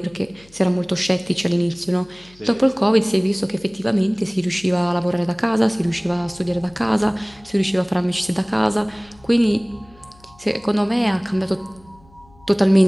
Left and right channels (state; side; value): noise; left; hum, 27 dB below the sound